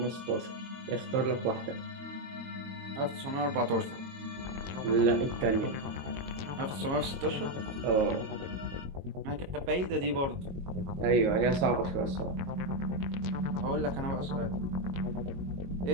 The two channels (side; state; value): left; late; 22 ms